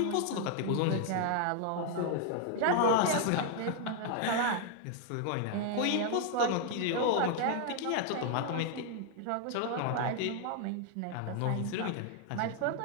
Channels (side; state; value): both; different; correlation 0.00